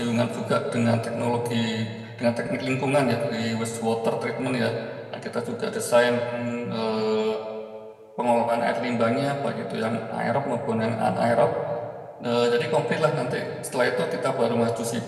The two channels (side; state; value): both; identical; correlation 1.00